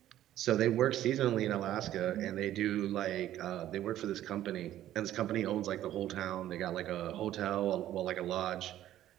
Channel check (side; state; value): left; quieter; 12.8 dB